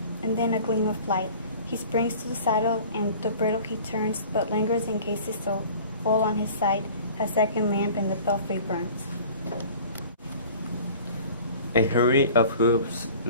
then a gleam of light. He springs to the saddle, and the bridle he turns, but lingers in case his soul full on his side. A second lamp in the belfry burns. A hurry of hoofs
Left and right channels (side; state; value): both; inverted; correlation -0.45